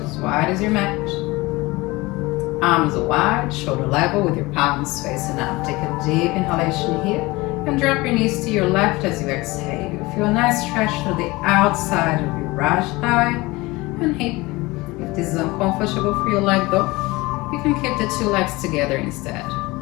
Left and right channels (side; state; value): right; quieter; 21.9 dB